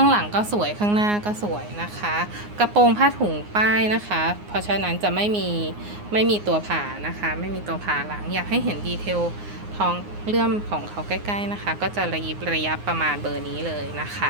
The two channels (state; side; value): late; left; 9.6 ms